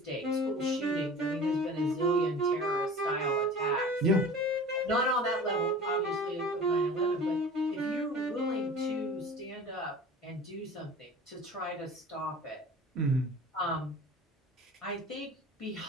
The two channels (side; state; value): both; normal; correlation 0.40